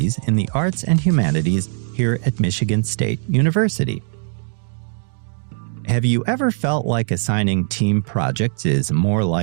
in the Arts and Humanities here at Michigan State University. Have you ever felt like assigning team projects is more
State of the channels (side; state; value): left; silent; digital silence